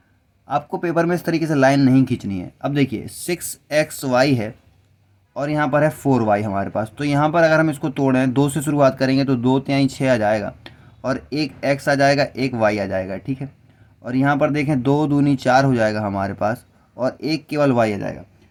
आपको पेपर में इस तरीके से लाइन नहीं खींचनी है। अब देखिए 6xy है और यहाँ पर है 4y हमारे पास, तो यहाँ पर अगर हम इसको तोड़ें, 2 से शुरुआत करेंगे तो 2 तिहाई 6 आ जाएगा, और एक x आ जाएगा, एक y आ जाएगा। ठीक है, और यहाँ पर देखें 2 दूनी 4 हो जाएगा हमारे पास, और एक केवल y आ जाएगा।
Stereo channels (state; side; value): identical; both; correlation 1.00